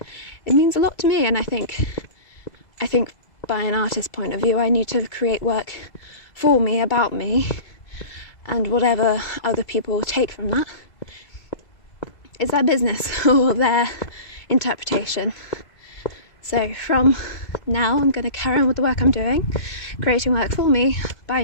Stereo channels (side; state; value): right; late; 2.2 ms